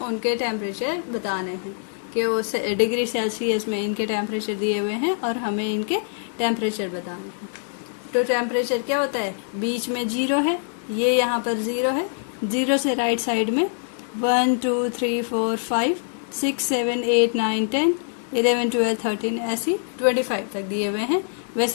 टेम्परेचर बताने हैं कि वो डिग्री सेल्सियस में इनके टेम्परेचर दिए हुए हैं और हमें इनके टेम्परेचर बताने हैं। तो टेम्परेचर क्या होता है, बीच में 0 है, ये यहाँ पर 0 है। 0 से राइट साइड में 1 2 3 4 5 6 7 8 9 10 11 12 13 ऐसी 25 तक दिए हुए हैं।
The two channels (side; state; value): right; silent; digital silence